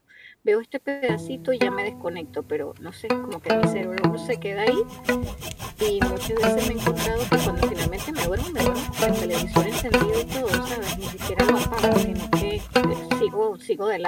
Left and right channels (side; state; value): both; identical; correlation 1.00